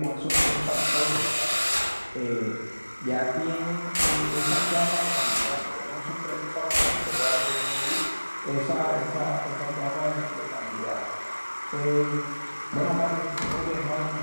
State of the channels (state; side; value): inverted; both; correlation -1.00